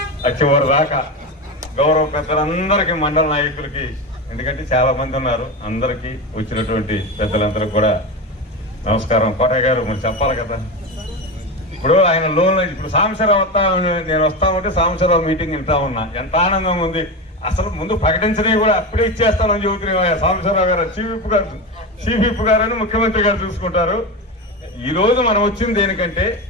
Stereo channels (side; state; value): both; normal; correlation 0.20